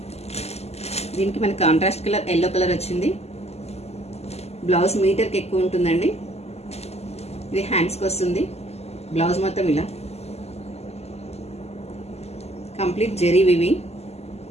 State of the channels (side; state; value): right; late; 0.30 ms